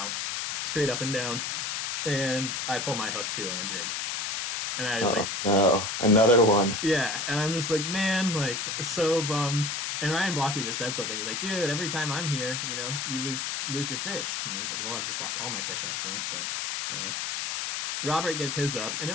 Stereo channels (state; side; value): noise; left; hiss, 2 dB below the sound